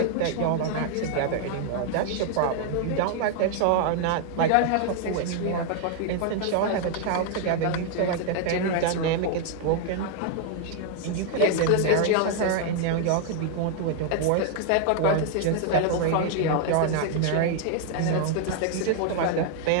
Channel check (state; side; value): different; both; correlation 0.00